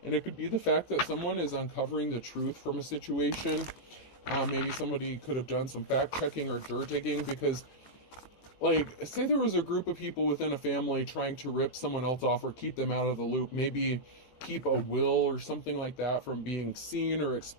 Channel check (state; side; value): late; right; 18 ms